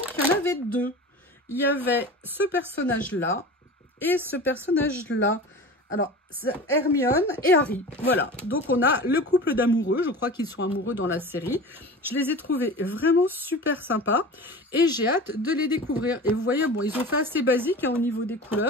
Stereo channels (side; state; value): both; normal; correlation 0.34